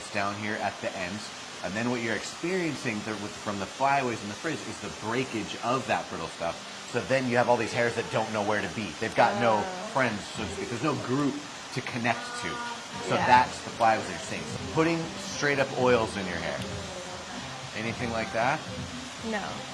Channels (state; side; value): identical; both; correlation 1.00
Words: down here at the ends, and then what you're experiencing from the flyaways and the frizz is the breakage of that brittle stuff. So then you have all these hairs that don't know where to be. They've got no friends, so to speak. There's no group to connect to. So that's the flyaways that you're seeing. So putting straight up oils in your hair. Anything like that? No.